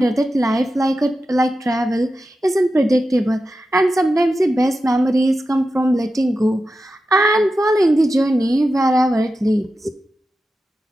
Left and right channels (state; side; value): normal; both; correlation 0.91